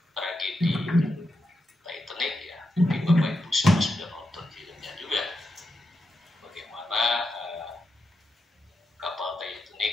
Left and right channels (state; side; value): normal; both; correlation 0.86